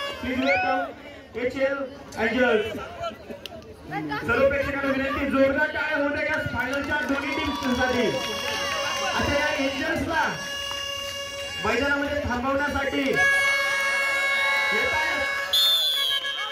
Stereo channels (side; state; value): both; identical; correlation 1.00